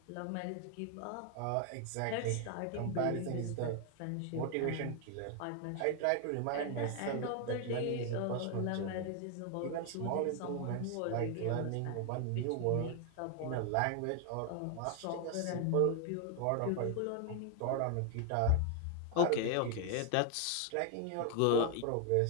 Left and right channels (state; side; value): different; both; correlation 0.00